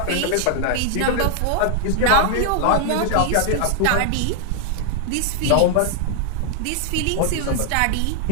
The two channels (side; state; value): both; different; correlation 0.00